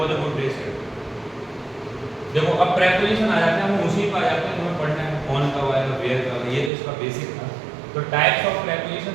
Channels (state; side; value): drops out; left; at 6.7 s